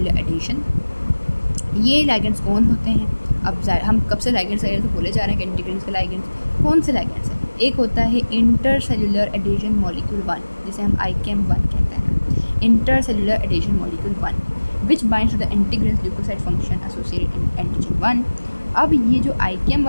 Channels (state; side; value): inverted; both; correlation -1.00